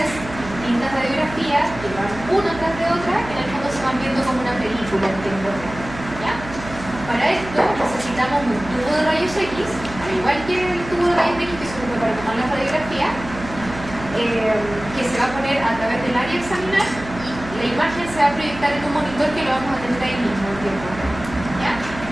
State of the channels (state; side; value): noise; right; hum, 13 dB below the sound